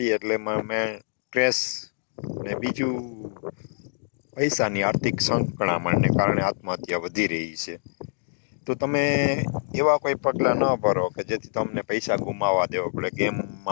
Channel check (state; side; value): silent; right; 61 dB below the other